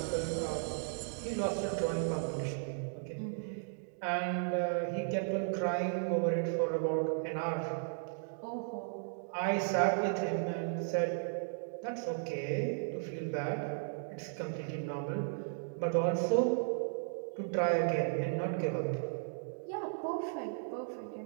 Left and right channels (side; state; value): left; silent; digital silence